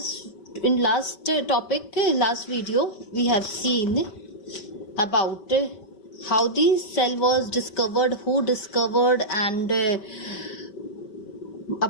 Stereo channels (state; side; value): late; right; 5.2 ms